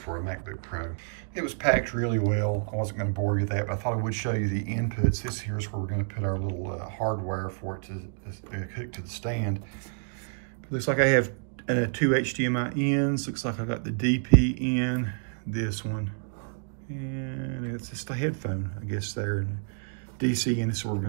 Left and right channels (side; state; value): left; silent; digital silence